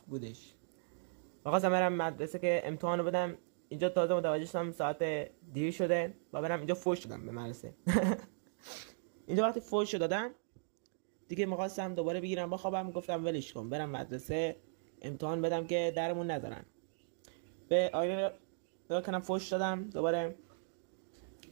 بودش و خواستم برم مدرسه که امتحانو بدم. اینجا تازه متوجه شدم ساعت دیر شده و برم اینجا فوش شدم به مدرسه. اینجا وقتی فوش دادم دیگه می‌خواستم دوباره بگیرم بخوابم، گفتم ولش کن برم مدرسه امتحان بدم که درمون نذارن. به آینه نگاه کردم، فوش دادم دوباره.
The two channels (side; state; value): left; silent; digital silence